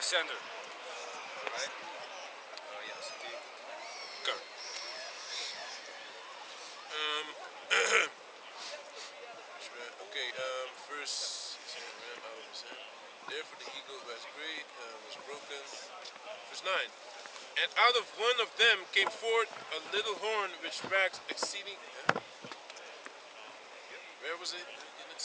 Right? Yes, indeed. Okay. Verse ram out of his hand. Therefore the eagle was great, was broken. Verse 9. And out of one of them came forth a little horn which waxed exceeding. Where was it?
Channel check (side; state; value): both; identical; correlation 1.00